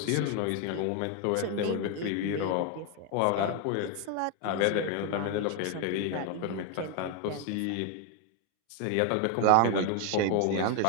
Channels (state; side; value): different; both; correlation 0.01